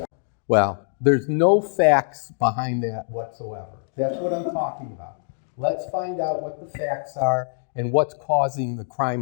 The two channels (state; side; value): silent; right; digital silence